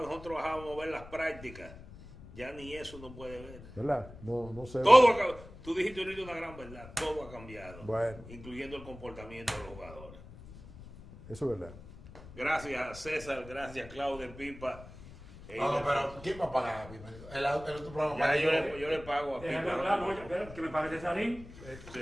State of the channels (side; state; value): left; noise; rumble, 17 dB below the sound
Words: nosotros bajábamos a ver las prácticas, ya ni eso no puede ver. ¿verdad? No sé. Todo ha cambiado. Tú dijiste ahorita una gran verdad, todo ha cambiado, Bueno. incluyendo el comportamiento de los jugadores. Eso es verdad. Gracias César, gracias Claudio Pipa. No, pero ¿quién va a pagar? El otro programa Ya para yo le pago a Déjame Pipa. hablar, oye, espera, que me pague Cesarín.